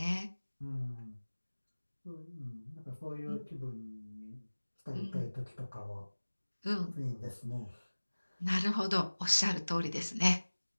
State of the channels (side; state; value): both; inverted; correlation -1.00